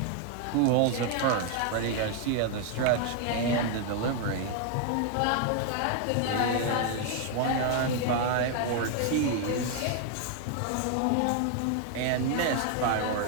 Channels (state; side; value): different; both; correlation 0.00